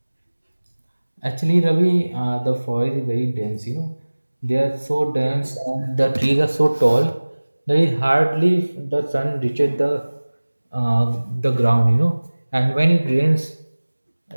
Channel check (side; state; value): both; inverted; correlation -1.00